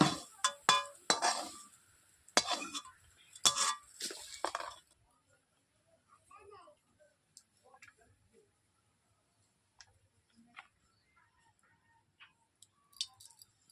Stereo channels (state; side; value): identical; both; correlation 1.00